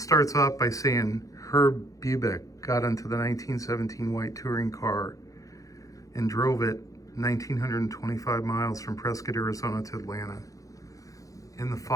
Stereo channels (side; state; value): right; late; 0.16 ms